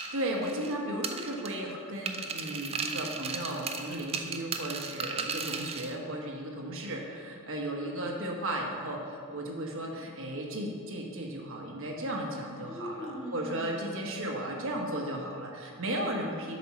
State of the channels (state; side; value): normal; both; correlation 0.14